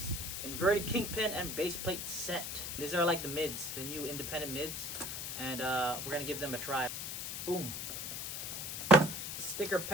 inverted kingpin and base plate set. These are like the mids, the new independent mids, and we're gonna give them a try. Boom. Sticker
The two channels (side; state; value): left; noise; hiss, 5 dB below the sound